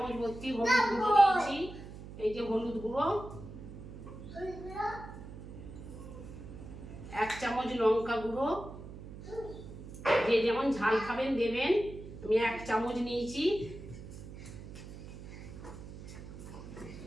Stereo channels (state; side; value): noise; right; hum, 13 dB below the sound